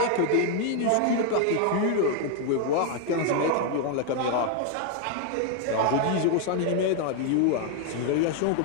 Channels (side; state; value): both; different; correlation 0.00